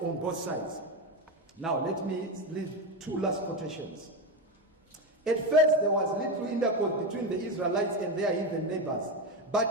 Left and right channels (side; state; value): both; normal; correlation 0.14